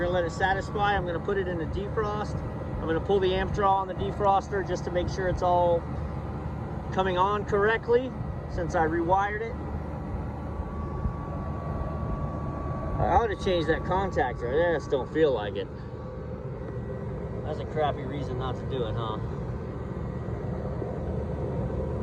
going to let it satisfy. I'm going to put it in a defrost. I'm going to pull the amp draw on the defroster just to make sure it's all coming on correctly since I rewired it. I ought to change that contactor. I just don't feel like it. That's a crappy reason not to do it, huh?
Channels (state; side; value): identical; both; correlation 1.00